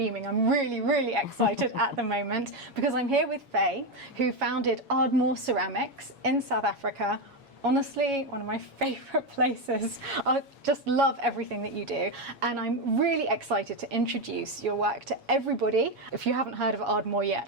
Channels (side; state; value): left; late; 7.2 ms